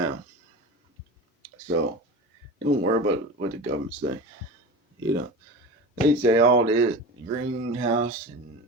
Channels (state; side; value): normal; both; correlation 0.31